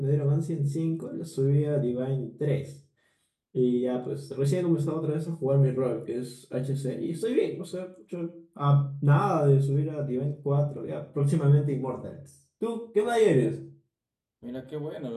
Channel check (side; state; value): both; identical; correlation 1.00